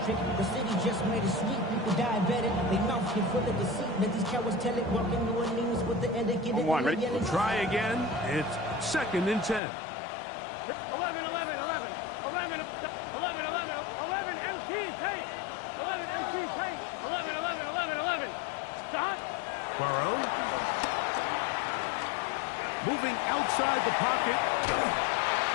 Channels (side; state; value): right; drops out; at 9.6 s